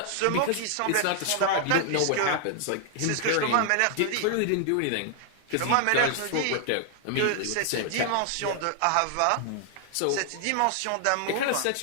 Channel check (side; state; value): both; different; correlation 0.00